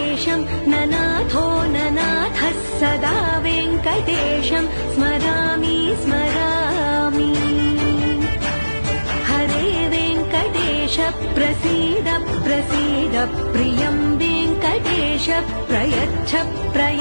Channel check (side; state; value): both; inverted; correlation -1.00